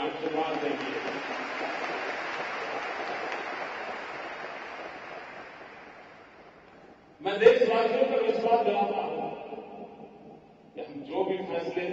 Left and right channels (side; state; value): both; identical; correlation 1.00